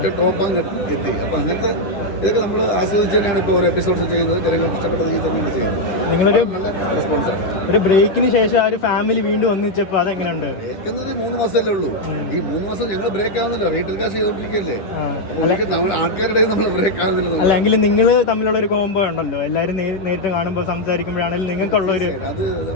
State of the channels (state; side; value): late; right; 10 ms